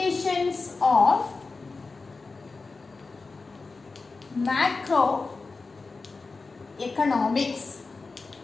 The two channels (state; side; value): quieter; right; 4.0 dB